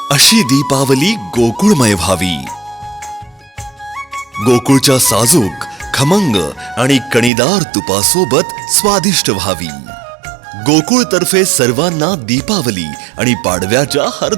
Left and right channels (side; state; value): left; drops out; at 7.3 s